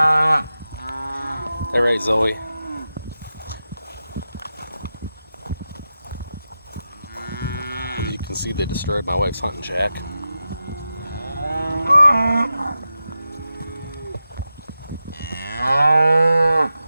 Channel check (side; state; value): both; inverted; correlation -0.91